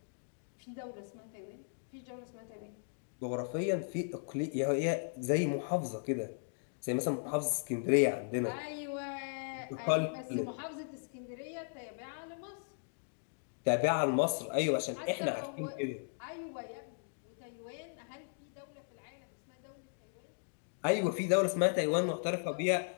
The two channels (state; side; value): silent; right; digital silence